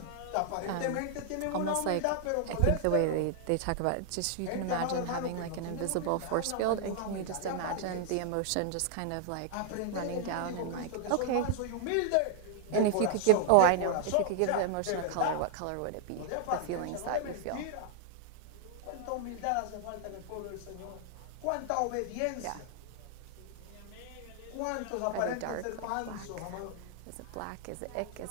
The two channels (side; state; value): both; different; correlation 0.00